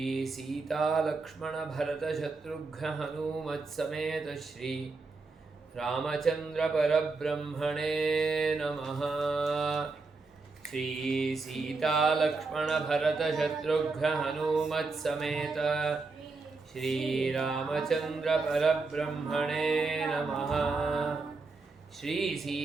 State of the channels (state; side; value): quieter; left; 3.9 dB